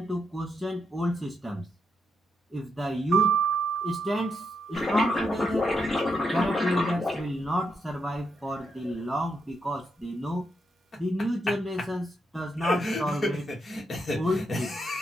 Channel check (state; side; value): normal; both; correlation 0.81